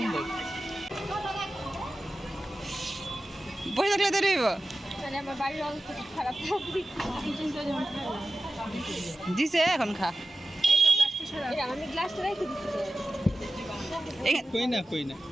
বসে থাকলে তো রইব। দিছে এখন খা।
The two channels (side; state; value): both; normal; correlation 0.93